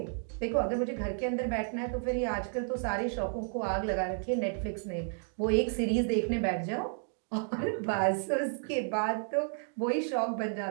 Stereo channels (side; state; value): left; silent; 56 dB below the other